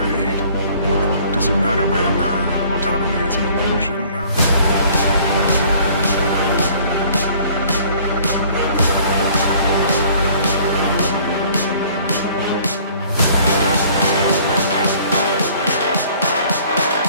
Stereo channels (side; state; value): both; inverted; correlation -0.54